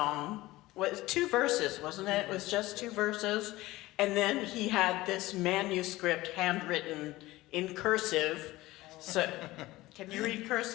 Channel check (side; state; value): right; quieter; 18.4 dB